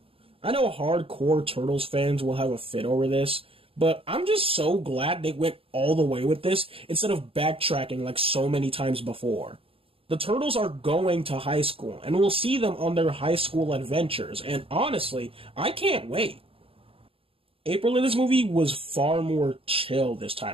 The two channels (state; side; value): late; left; 0.27 ms